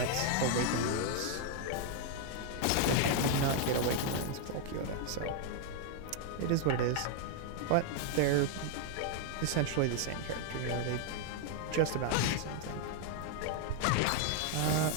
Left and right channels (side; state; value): both; different; correlation 0.00